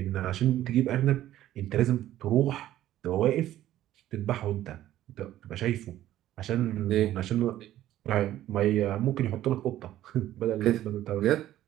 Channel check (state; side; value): quieter; left; 13.3 dB